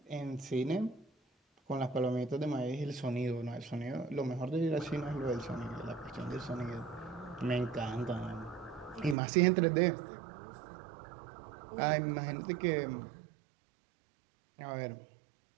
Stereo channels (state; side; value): drops out; left; at 9.2 s